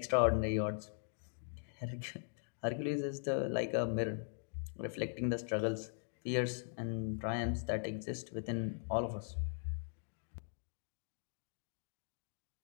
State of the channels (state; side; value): silent; right; digital silence